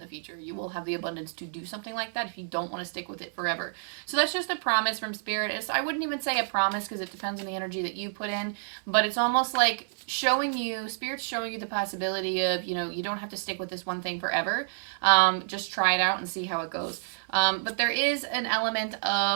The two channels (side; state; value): left; silent; 59 dB below the other